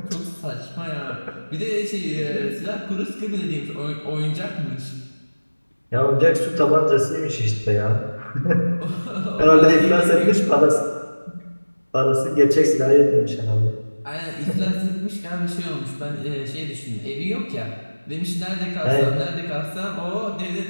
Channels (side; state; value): both; inverted; correlation -1.00